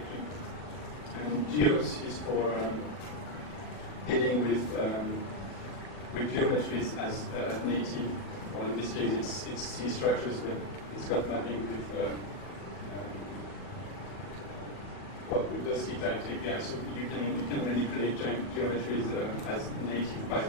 And geos is for dealing with geometries as native. Well, in this case, it's C structures, but it's got mapping with with the ctypes API, so you can manipulate geometries as native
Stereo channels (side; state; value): right; late; 40 ms